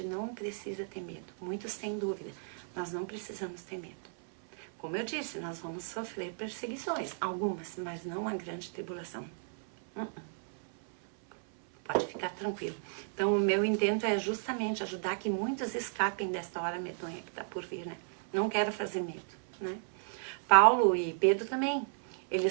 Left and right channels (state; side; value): silent; left; 55 dB below the other